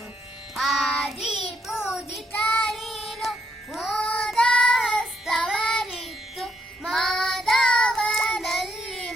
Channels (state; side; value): normal; both; correlation 0.75